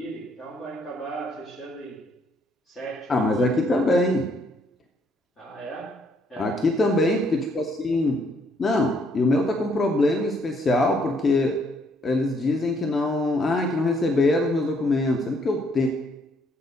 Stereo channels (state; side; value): normal; both; correlation 0.69